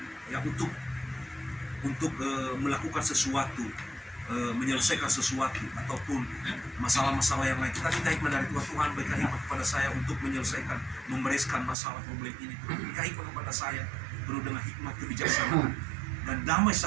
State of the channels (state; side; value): drops out; left; at 11.8 s